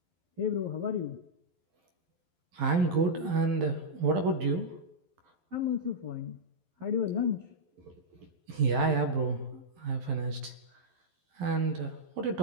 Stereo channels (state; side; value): late; left; 11 ms